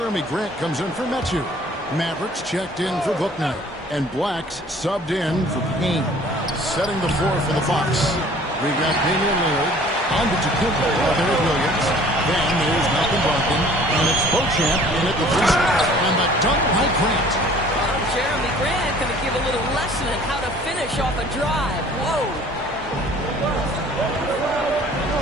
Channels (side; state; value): both; normal; correlation 0.52